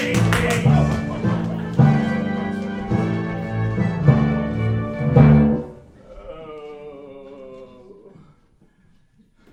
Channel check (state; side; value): identical; both; correlation 1.00